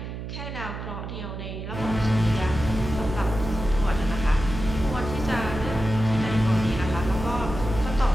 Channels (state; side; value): noise; right; hum, 8 dB below the sound